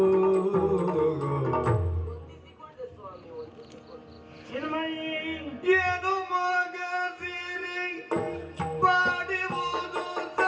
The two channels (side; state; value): both; identical; correlation 1.00